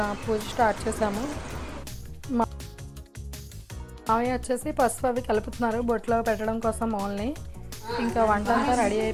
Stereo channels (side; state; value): both; identical; correlation 1.00